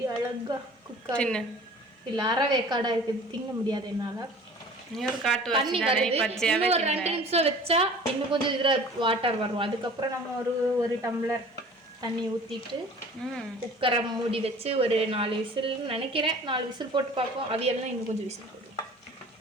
அழகா குக் ஆகுது. இல்லை அறவேக்காடாக இருக்குது, திங்க முடியாது என்னால். தண்ணி வருது. இன்னும் ஒரு 2 நிமிஷம் வச்சா இன்னும் கொஞ்சம் இதில் வாட்டர் வரும். அதுக்கப்புறம் நம்ம ஒரு டம்ளர் தண்ணி ஊற்றிட்டு குக்கரை மூடி வச்சு ஒரு 4 விசில் நினைக்கிறேன். 4 விசில் போட்டு பார்ப்போம். அவியெல்லாம் இன்னும் கொஞ்சம் விசில் போடுவோம்.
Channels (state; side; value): normal; both; correlation 0.45